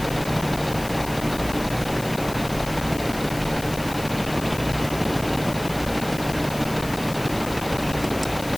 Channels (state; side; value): noise; left; hiss, 14 dB below the sound